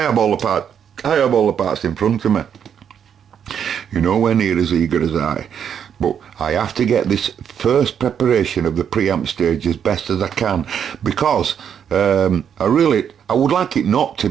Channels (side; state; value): left; quieter; 8.2 dB